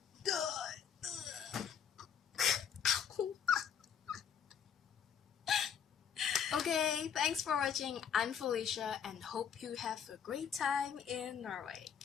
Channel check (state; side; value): quieter; right; 7.9 dB